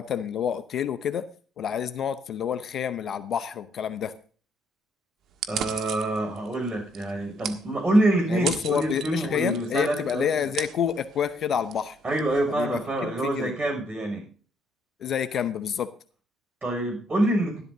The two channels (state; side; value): normal; both; correlation 0.70